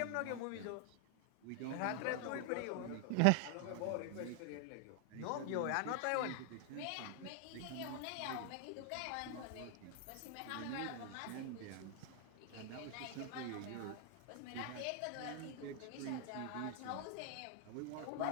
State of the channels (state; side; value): different; both; correlation 0.00